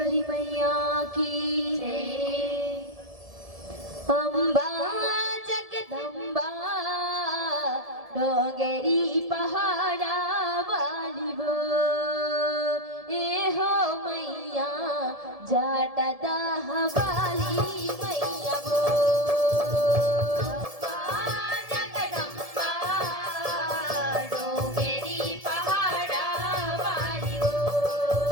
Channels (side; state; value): left; late; 1.7 ms